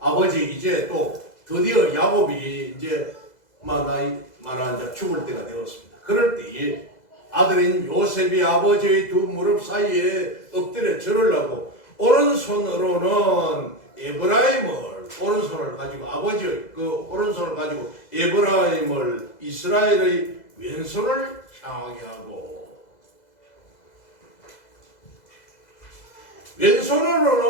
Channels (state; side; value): late; right; 2.0 ms